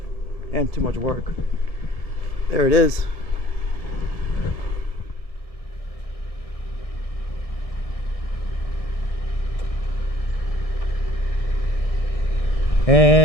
and too much work. There it is.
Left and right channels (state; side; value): late; right; 1.6 ms